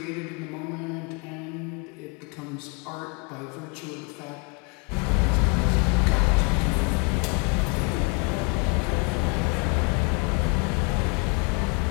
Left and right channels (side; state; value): right; quieter; 32.0 dB